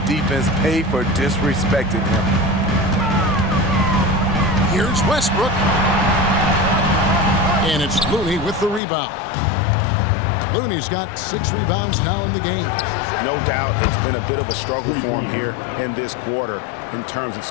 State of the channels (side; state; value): right; drops out; at 8.8 s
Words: pay for disrespecting him. Here's Westbrook. And it's Looney with the rebound. Looney's got 6 rebounds now in the game. No doubt it's been a bit of a struggle for him here in this quarter in terms of